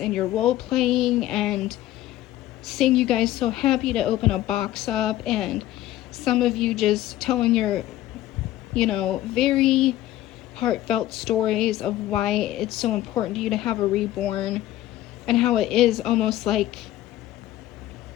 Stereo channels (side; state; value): right; quieter; 14.6 dB